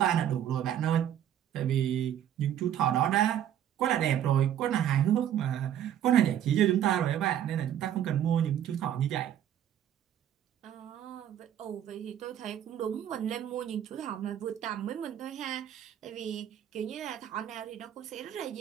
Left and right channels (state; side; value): quieter; left; 10.5 dB